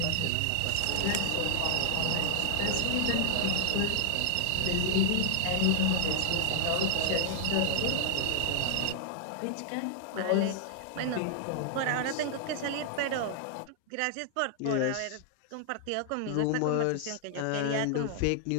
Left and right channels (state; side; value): different; both; correlation 0.00